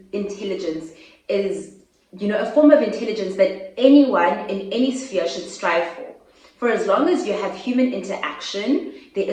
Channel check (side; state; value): both; identical; correlation 1.00